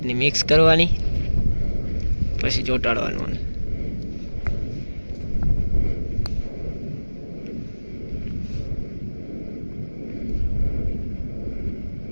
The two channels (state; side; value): inverted; both; correlation -1.00